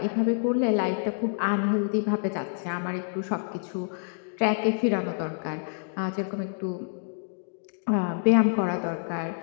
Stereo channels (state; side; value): silent; right; digital silence